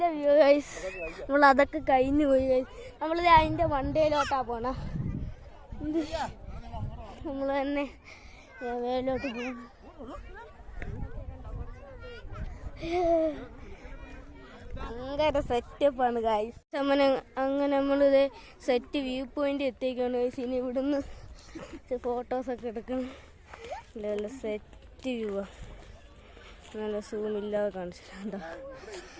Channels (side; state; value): both; identical; correlation 1.00